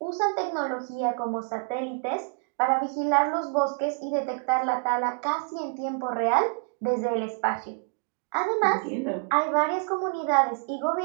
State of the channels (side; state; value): left; quieter; 39.4 dB